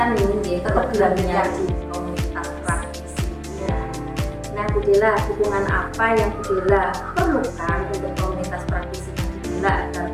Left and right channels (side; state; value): both; identical; correlation 1.00